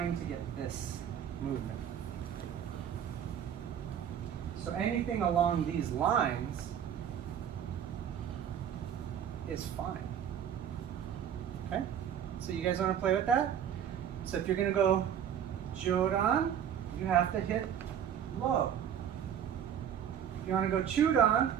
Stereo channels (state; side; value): quieter; left; 9.2 dB